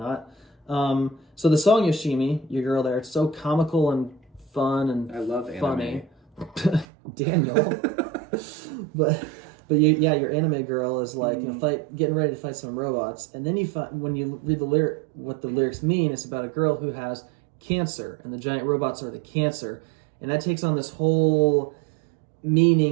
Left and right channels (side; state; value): left; drops out; at 6.9 s